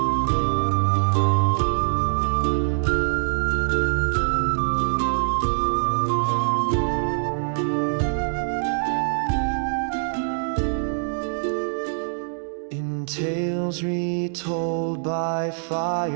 Tales retold by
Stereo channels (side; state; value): left; silent; digital silence